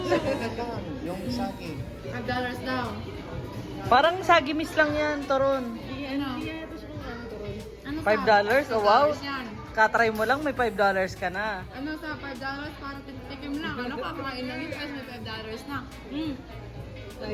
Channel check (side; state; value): both; identical; correlation 1.00